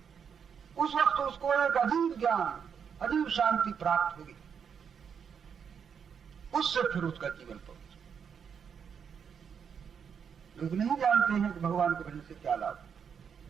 उस वक्त उसको एक अजीब ज्ञान, अजीब शांति प्राप्त होगी। उससे फिर उसका जीवन पवित्र। लोग नहीं जानते हैं कि भगवान के भजन से क्या लाभ।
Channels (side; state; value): left; quieter; 7.1 dB